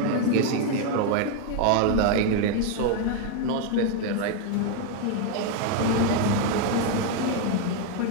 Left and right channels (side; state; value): both; different; correlation 0.01